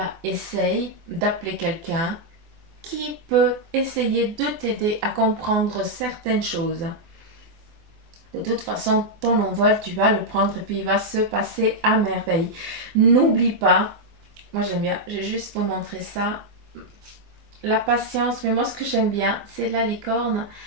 Essaye d'appeler quelqu'un qui peut essayer de t'aider à comprendre certaines choses. De toute façon, ton envol, tu vas le prendre et puis il va se passer à merveille. N'oublie pas, moi j'aime bien, je vais juste vous montrer ça. La patience, mais moi ce que j'aime bien, c'est la licorne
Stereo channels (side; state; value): left; late; 24 ms